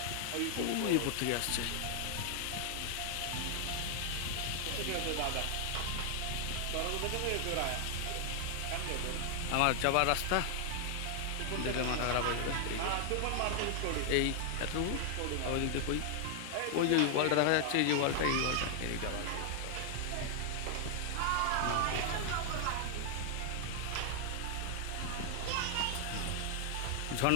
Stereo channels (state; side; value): different; both; correlation 0.00